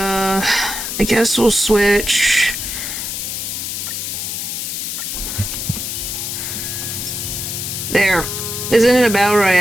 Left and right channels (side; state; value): left; noise; hiss, 4 dB below the sound